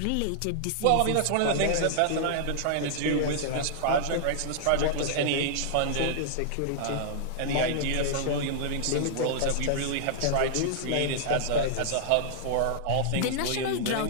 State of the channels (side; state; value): both; different; correlation -0.01